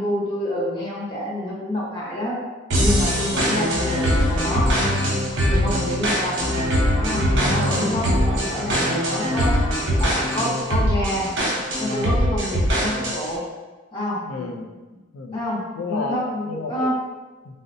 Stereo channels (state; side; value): normal; both; correlation 0.58